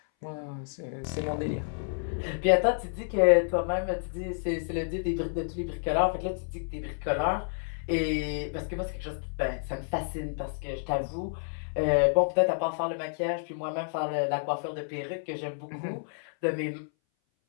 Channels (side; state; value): right; silent; 58 dB below the other